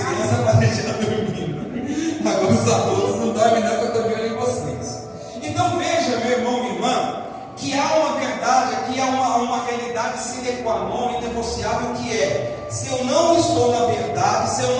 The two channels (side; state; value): both; identical; correlation 1.00